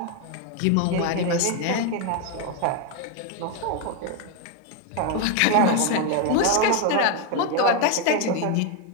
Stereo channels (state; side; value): different; both; correlation 0.01